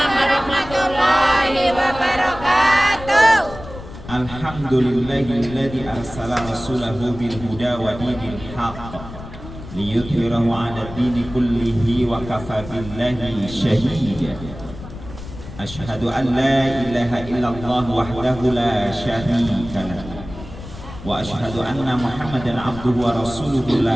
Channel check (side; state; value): left; noise; rumble, 13 dB below the sound